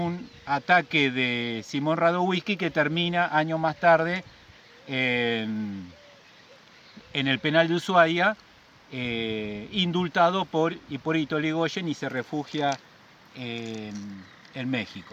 ataque de Simón Radowisky, que termina años más tarde en el penal de Ushuaia, indultado por Hipólito Yrigoyen, y se refugia en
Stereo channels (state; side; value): identical; both; correlation 1.00